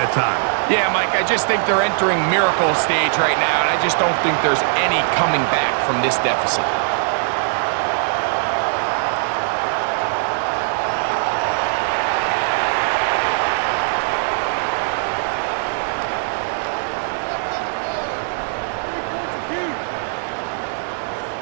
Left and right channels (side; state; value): left; silent; digital silence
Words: time. Yeah, Mike, I just think they're entering miracle stage right now, and I just don't think there's any coming back from this deficit.